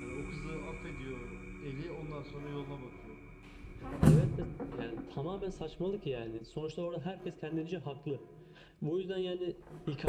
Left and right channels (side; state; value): both; identical; correlation 1.00